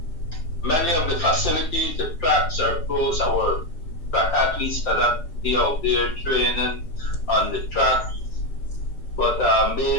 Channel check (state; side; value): late; right; 5.8 ms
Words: many of the facilities, the tracks are closed. Our track athletes cannot be out there training on the track. But